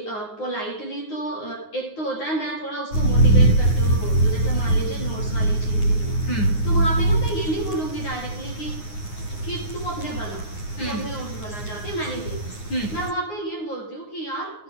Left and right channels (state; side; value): late; right; 9.6 ms